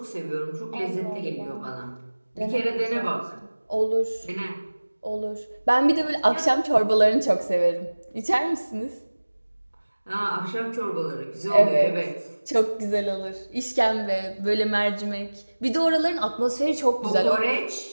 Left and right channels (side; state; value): both; inverted; correlation -1.00